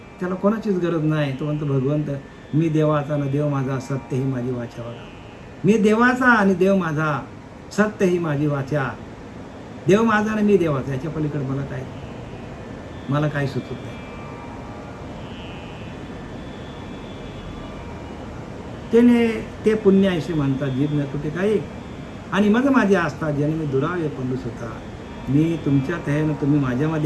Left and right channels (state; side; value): identical; both; correlation 1.00